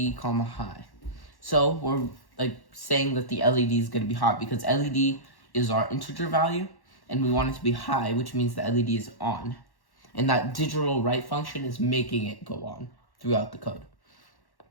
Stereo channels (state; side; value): late; right; 1.1 ms